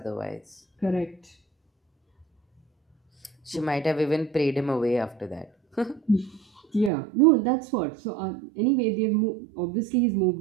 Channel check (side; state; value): left; drops out; at 6.9 s